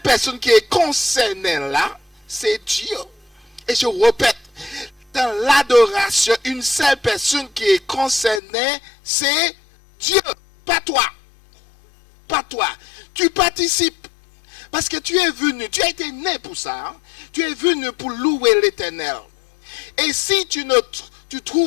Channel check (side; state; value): right; drops out; at 8.4 s